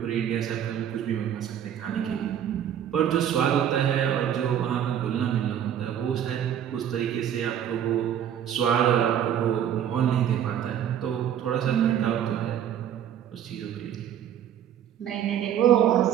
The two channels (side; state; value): left; quieter; 9.8 dB